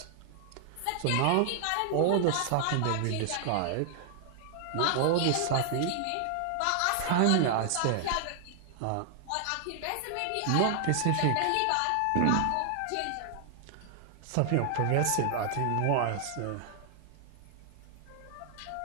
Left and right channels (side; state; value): both; different; correlation 0.00